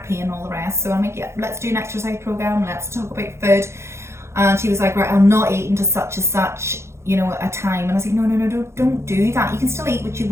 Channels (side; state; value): left; late; 0.13 ms